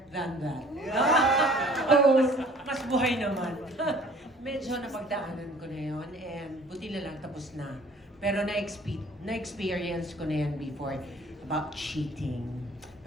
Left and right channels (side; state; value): both; normal; correlation 0.52